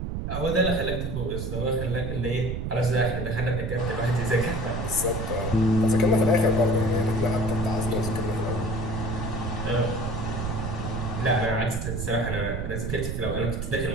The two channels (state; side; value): noise; right; rumble, 3 dB below the sound